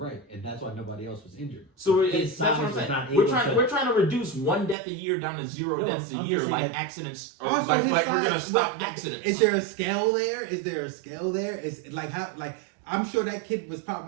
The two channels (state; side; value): drops out; left; at 4.8 s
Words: and that's why nobody else was injured. So that's what I'm saying. We're trying to reduce 1 death a year down to 0 deaths a year, like accidents. Or like we're gonna stop accidents. Is there a scale there? Is like how like. I'm sure that kid was